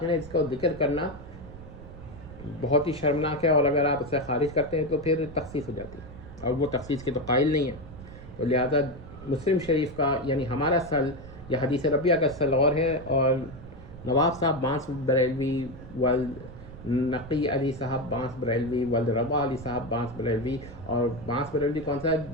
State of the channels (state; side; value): noise; right; rumble, 15 dB below the sound